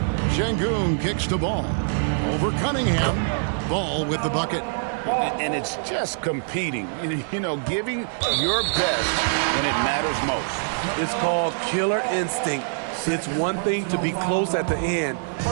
Şengün kicks the ball. Over Cunningham. Ball with the bucket. And it's just competing, you know, giving your best when it matters most. It's called killer instinct. It's one thing to be close at the end.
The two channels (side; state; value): left; silent; digital silence